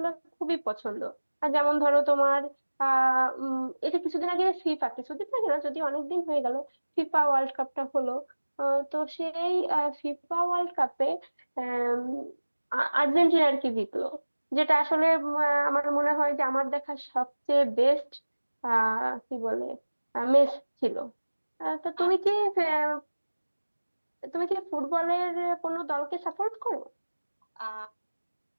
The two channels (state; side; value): inverted; both; correlation -1.00